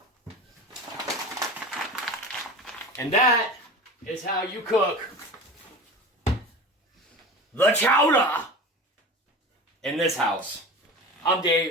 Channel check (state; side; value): normal; both; correlation 0.33